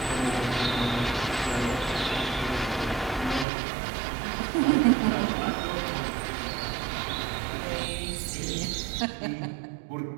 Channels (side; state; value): left; drops out; at 3.5 s